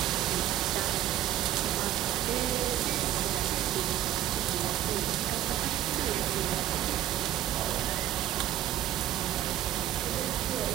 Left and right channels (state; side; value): quieter; left; 12.5 dB